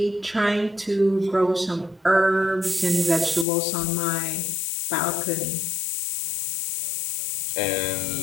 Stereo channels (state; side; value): drops out; right; at 3.5 s